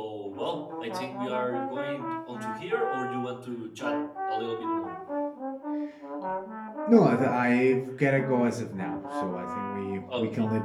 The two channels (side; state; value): both; identical; correlation 1.00